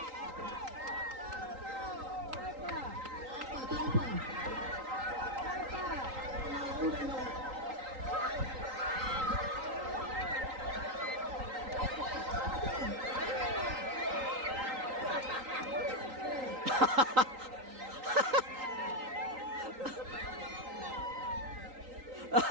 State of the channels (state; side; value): late; left; 3.8 ms